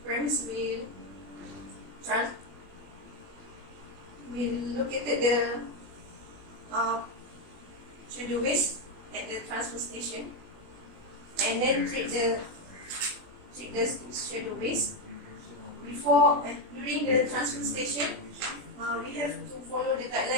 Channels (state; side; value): late; left; 20 ms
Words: premise will located the schedule waste at the transfer station, and then treat the schedule waste. During the transfer station, we have to follow the